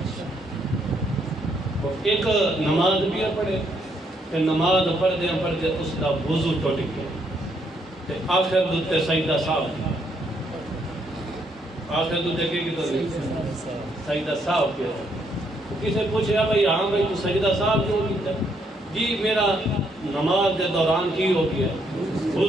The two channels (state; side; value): normal; both; correlation 0.73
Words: ایک نماز بھی پڑھے کہ نماز پڑھدے پڑھدے اس دا وضو ٹوٹ گیا تے آخر دتے سجدہ صاحب، آخر دتے کہ سجدہ صاحب کیا۔ کسے پوچھا بھائی ہاں بھائی تو سجدہ صاحب کیوں کیتا؟ جی میرا نماز دے دوران کی ہو گیا،